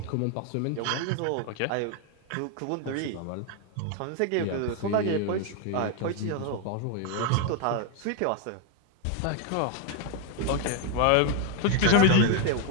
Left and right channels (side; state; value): both; different; correlation 0.01